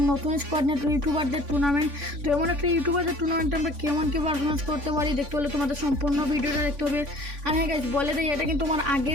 নতুন স্কোয়াড নিয়ে ইউটিউবারদের টুর্নামেন্ট। তো এমন একটা ইউটিউবারদের টুর্নামেন্টে আমরা কেমন কি পারফরমেন্স করতে পারি দেখতে হলে তোমাদের সম্পূর্ণ ভিডিওটা দেখতে হবে। আর হ্যাঁ গাইস, বলে দেয় এটা কিন্তু আমার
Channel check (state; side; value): late; left; 3.5 ms